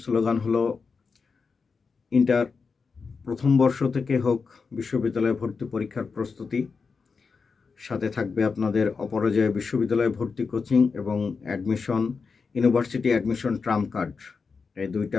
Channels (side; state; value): right; quieter; 5.0 dB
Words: স্লোগান হলো ইন্টার প্রথম বর্ষ থেকে হোক বিশ্ববিদ্যালয়ে ভর্তি পরীক্ষার প্রস্তুতি। সাথে থাকবে আপনাদের অপরাজয় বিশ্ববিদ্যালয়ে ভর্তি কোচিং এবং admission, university admission Trump card. এই